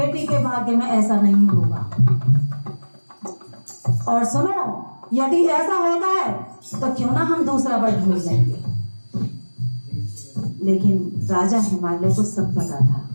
के भाग्य में ऐसा नहीं होगा। और सुनो, यदि ऐसा होता है तो क्यों ना हम दूसरा वर ढूंढ लेंगे। लेकिन राजा हिमालय को सब पता था।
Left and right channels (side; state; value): both; inverted; correlation -1.00